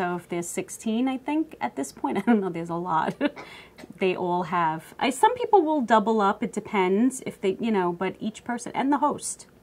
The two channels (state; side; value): identical; both; correlation 1.00